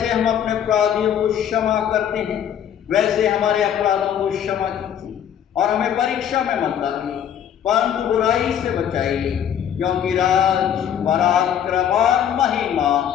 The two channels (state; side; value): quieter; right; 9.5 dB